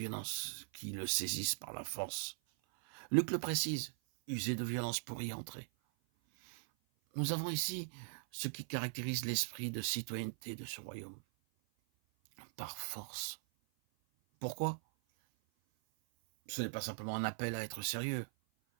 qui le saisissent par la force. Luc le précise, user de violence pour y entrer. Nous avons ici ce qui caractérise l'esprit de citoyenneté de ce royaume. Par force. Pourquoi? Ce n'est pas simplement un appel à être sérieux,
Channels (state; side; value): silent; left; 51 dB below the other